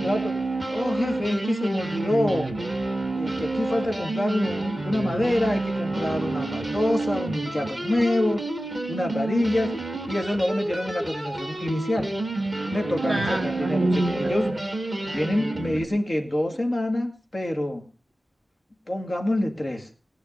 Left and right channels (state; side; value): normal; both; correlation 0.95